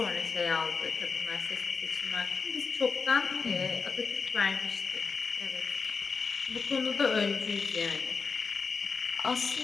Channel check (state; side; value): quieter; right; 5.0 dB